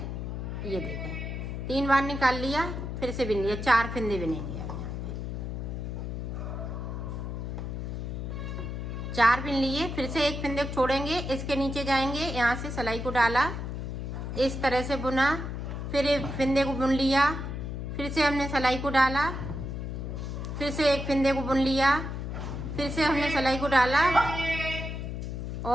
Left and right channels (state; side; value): noise; left; hum, 5 dB below the sound